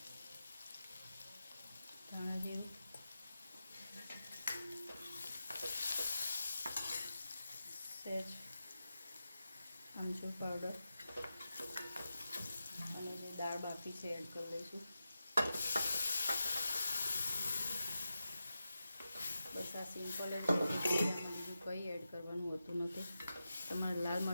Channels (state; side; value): inverted; both; correlation -0.90